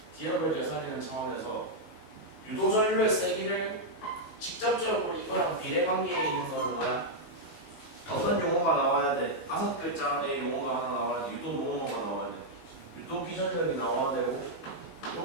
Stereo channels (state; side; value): late; right; 18 ms